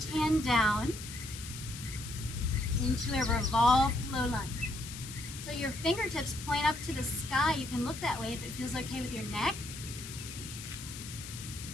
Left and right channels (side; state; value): left; noise; hiss, 11 dB below the sound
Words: hand down into a revolved low lunge. So your fingertips point up to the sky. You can look that way if it feels okay with your neck.